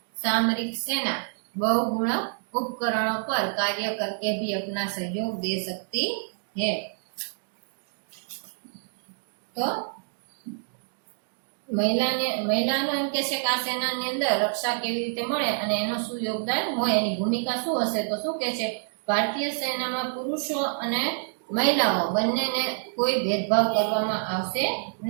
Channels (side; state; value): left; silent; digital silence